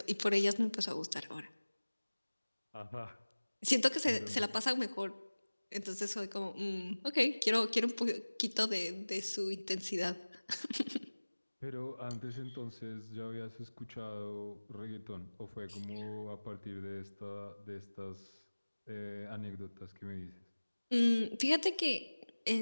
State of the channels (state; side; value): inverted; both; correlation -1.00